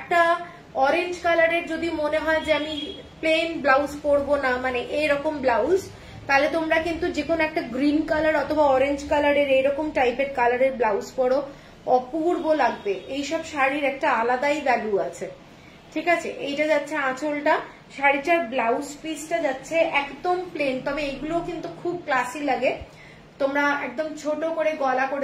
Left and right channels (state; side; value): identical; both; correlation 1.00